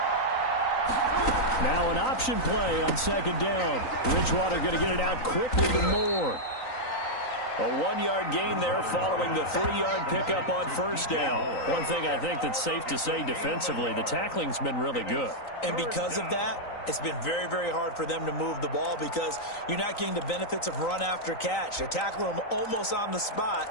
Now an option play on 2nd down. Bridgewater going to get it out quickly to Moore. A 1-yard gain there following the 3-yard pickup on 1st down. One thing I think that's safe to say defensively, the tackling's been really good. And because of that, it's been very, very hard for them to move the ball because you're not getting the benefits of run after catch. They're tackling them almost on the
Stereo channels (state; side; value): late; right; 3.9 ms